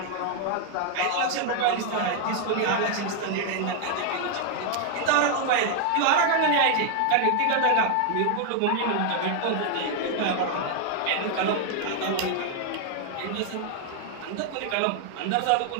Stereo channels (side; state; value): both; different; correlation 0.00